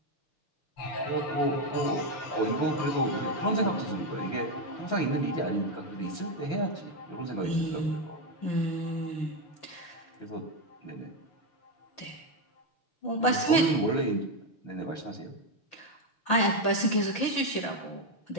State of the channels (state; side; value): late; right; 5.9 ms